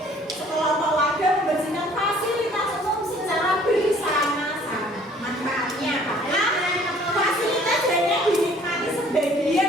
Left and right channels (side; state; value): both; normal; correlation 0.56